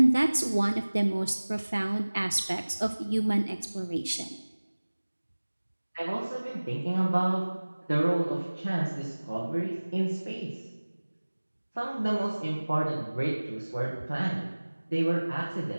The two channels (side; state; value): both; inverted; correlation -1.00